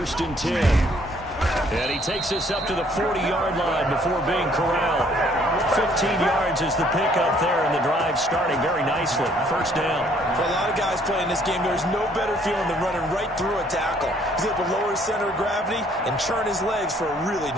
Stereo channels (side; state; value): both; normal; correlation 0.63